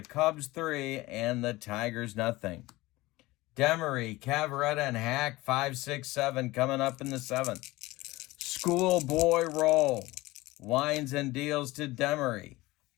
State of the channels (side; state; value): right; quieter; 19.8 dB